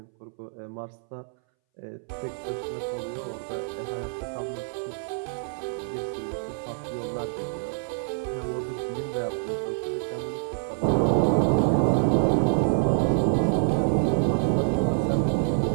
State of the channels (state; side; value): silent; left; 60 dB below the other